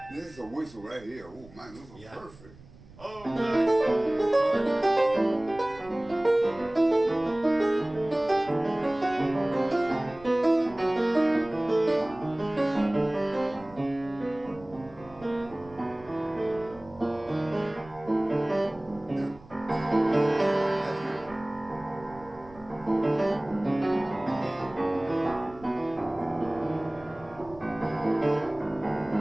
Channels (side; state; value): right; noise; rumble, 22 dB below the sound